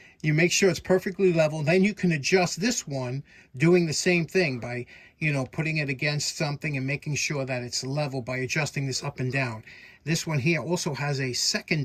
You make sure it's perfectly level. Then you can adjust this one doing the same thing by, you know, putting it against something and making sure that it's level by adjusting this up and down. This one here also has a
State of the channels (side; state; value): both; identical; correlation 1.00